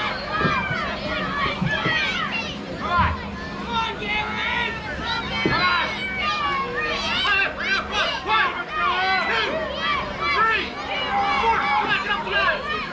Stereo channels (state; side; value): identical; both; correlation 1.00